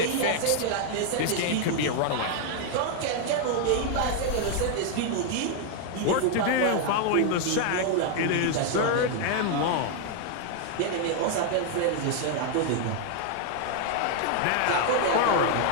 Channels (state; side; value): different; both; correlation 0.00